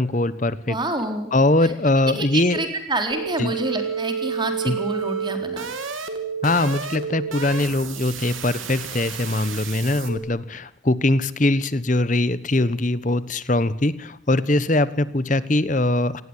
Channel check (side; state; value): both; normal; correlation 0.50